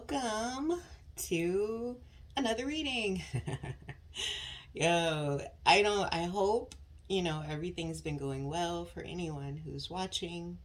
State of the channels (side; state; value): both; identical; correlation 1.00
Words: to another reading. I hope, everything's been going well for anyone who's watching.